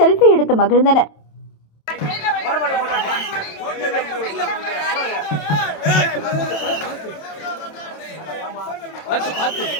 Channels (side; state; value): right; late; 27 ms